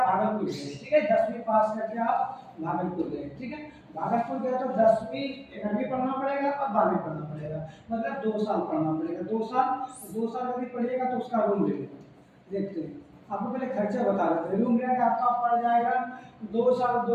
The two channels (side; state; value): both; identical; correlation 1.00